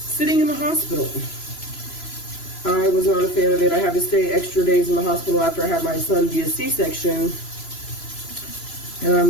in the hospital. I was not a fan of it. I had to stay extra days in the hospital after I had my son via C-section, and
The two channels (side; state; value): right; late; 3.0 ms